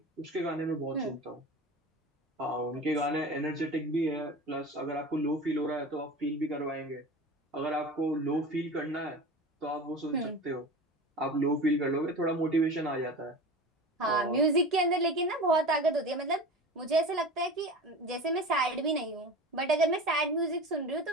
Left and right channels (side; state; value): both; normal; correlation 0.33